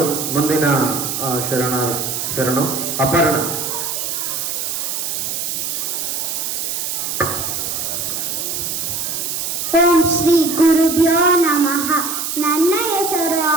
ಮುಂದಿನ ಶರಣು ಅಪರ್ಣ. ಓಂ ಶ್ರೀ ಗುರುಭ್ಯೋ ನಮಃ. ನನ್ನ ಹೆಸರು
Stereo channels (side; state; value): right; noise; hiss, 3 dB below the sound